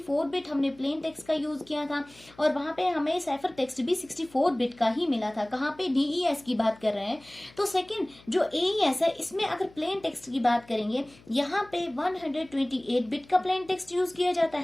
बिट हमने प्लेन टेक्स्ट का यूज किया था, और वहां पे हमें साइफर टेक्स्ट भी 64 बिट का ही मिला था। कहाँ पे? DES की बात कर रहे हैं। तो सेकंड जो AES है, इसमें अगर प्लेन टेक्स्ट की बात करेंगे, यहाँ पे 128 बिट का प्लेन टेक्स्ट यूज किया जाता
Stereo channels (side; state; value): left; noise; hum, 26 dB below the sound